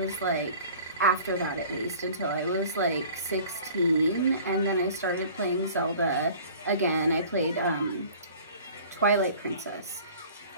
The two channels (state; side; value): inverted; both; correlation -0.46